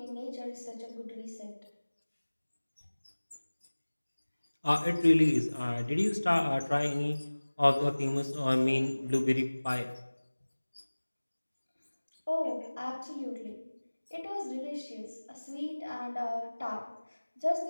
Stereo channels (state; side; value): inverted; both; correlation -1.00